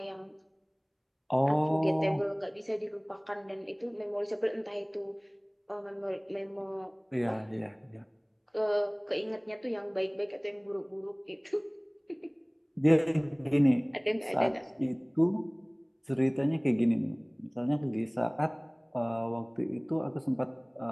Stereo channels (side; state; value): both; identical; correlation 1.00